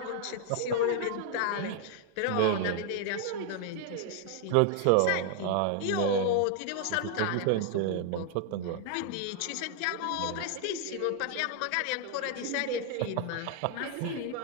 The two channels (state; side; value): different; both; correlation 0.00